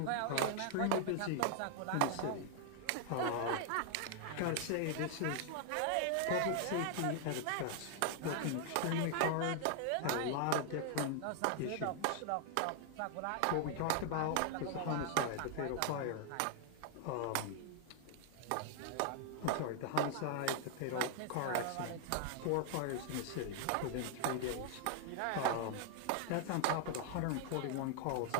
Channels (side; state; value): both; different; correlation 0.00